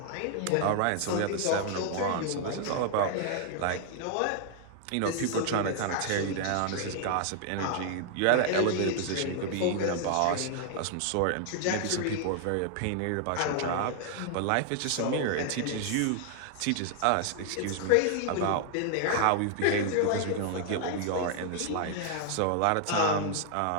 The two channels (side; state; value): both; different; correlation 0.00